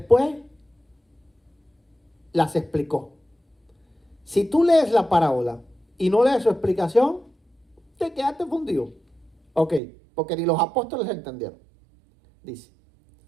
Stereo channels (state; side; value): drops out; left; at 9.8 s